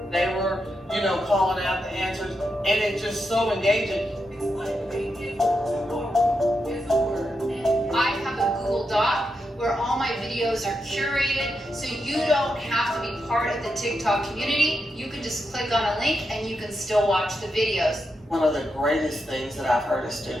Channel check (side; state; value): both; normal; correlation 0.85